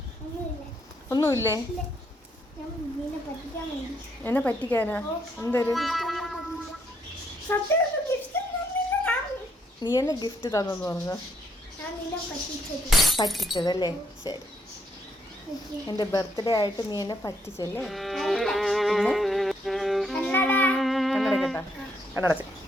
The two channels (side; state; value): both; normal; correlation 0.73